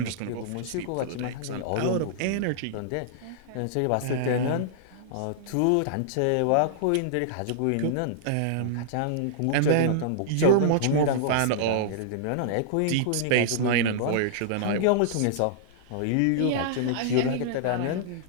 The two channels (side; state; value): both; different; correlation -0.01